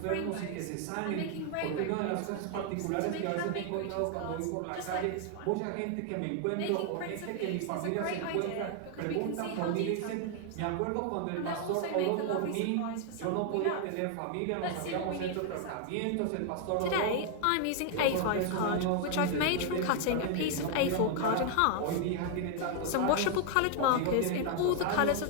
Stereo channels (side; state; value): both; different; correlation 0.00